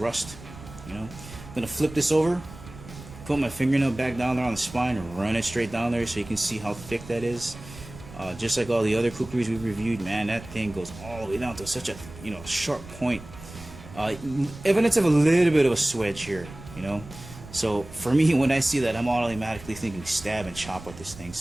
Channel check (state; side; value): noise; right; rumble, 16 dB below the sound